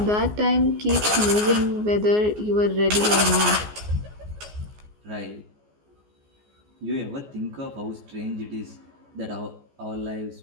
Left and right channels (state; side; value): late; left; 14 ms